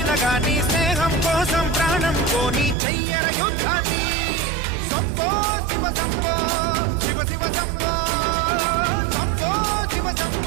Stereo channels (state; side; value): drops out; left; at 2.8 s